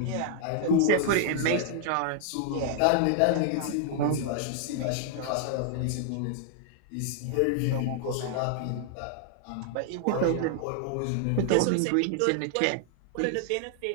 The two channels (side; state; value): both; different; correlation 0.00